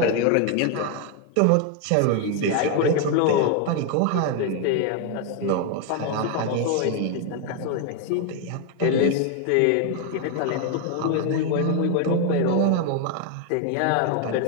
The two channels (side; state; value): both; different; correlation 0.01